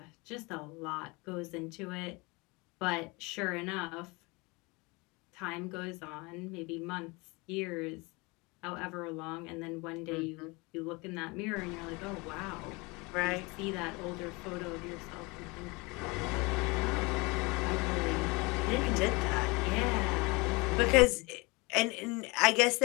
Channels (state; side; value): quieter; right; 26.1 dB